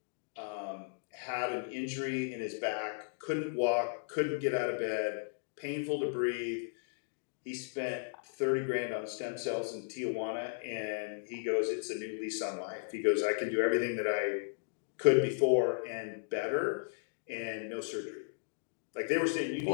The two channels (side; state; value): right; silent; digital silence